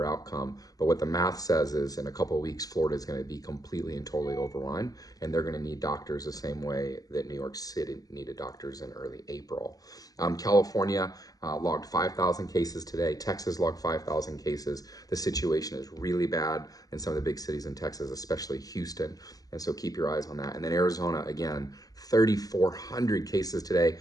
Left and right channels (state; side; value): late; right; 0.18 ms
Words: outcome. But what the math says is in a couple of weeks, Florida is going to be completely and totally overrun, and they're going to need doctors the same way that New York City needed doctors in early April. California logged 5,000 cases today. Texas logged 5,000 cases. The situation is really bad in some of the big cities in Texas, especially Houston. And so keep your eyes on that. And then Arizona, again, 3,400 cases today.